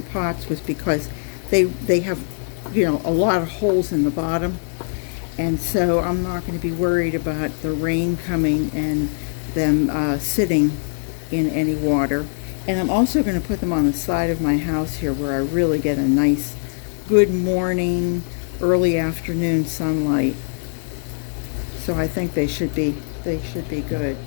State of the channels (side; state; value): right; silent; digital silence